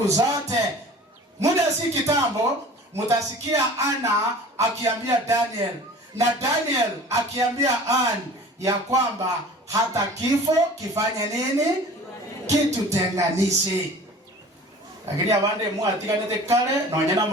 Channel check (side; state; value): both; normal; correlation 0.43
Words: zote. Muda si kitambo, mutasikia Ana akiambia Daniel, na Daniel akiambia Anne ya kwamba hata kifo kifanye nini? Kitutenganishe. Lakini abande muatiganete kale na wanyana